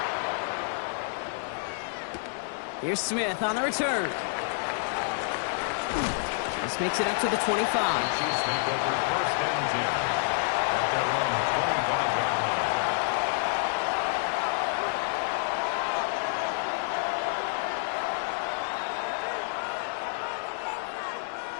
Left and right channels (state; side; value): silent; right; digital silence